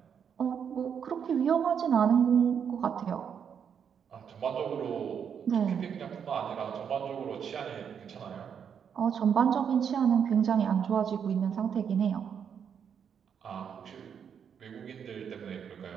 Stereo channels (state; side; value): quieter; left; 7.6 dB